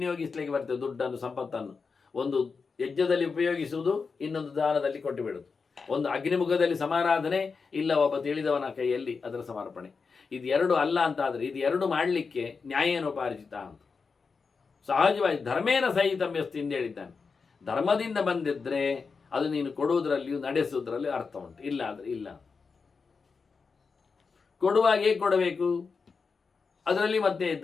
ಬರ್ತದೆ ದುಡ್ಡನ್ನು, ಸಂಪತ್ತನ್ನು. ಒಂದು ಯಜ್ಞದಲ್ಲಿ ಉಪಯೋಗಿಸುವುದು, ಇನ್ನೊಂದು ದಾನದಲ್ಲಿ ಕೊಟ್ಟು ಬಿಡುವುದು. ಒಂದು ಅಗ್ನಿಮುಖದಲ್ಲಿ ಸಮಾರಾಧನೆ, ಇಲ್ಲ ಒಬ್ಬ ತಿಳಿದವನ ಕೈಯಲ್ಲಿ ಅದರ ಸಮರ್ಪಣೆ. ಇದು ಎರಡು ಅಲ್ಲ ಅಂತಾದರೆ, ಇದು ಎರಡು ಮಾಡಲಿಕ್ಕೆ ನ್ಯಾಯೇನೋಪಾರ್ಜಿತ ಅಂತ. ಸಹಜವಾಗಿ ಧರ್ಮೇನ ಸಹಿತಮ್ಯಸ್ತಿ ಎಂದು ಹೇಳಿದ್ದಾನೆ. ಧರ್ಮದಿಂದ ಬಂದಿದ್ದರೆ ಅದು ನೀನು ಕೊಡುವುದರಲ್ಲಿಯೂ ನಡೆಸುವುದರಲ್ಲಿ ಅರ್ಥ ಉಂಟು, ಇಲ್ಲ ಅಂದರೆ ಇಲ್ಲ. ಕೊಡುವಾಗ ಹೇಗೆ ಕೊಡಬೇಕು? ಅದರಲ್ಲಿ ಮತ್ತೆ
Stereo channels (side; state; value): right; quieter; 5.0 dB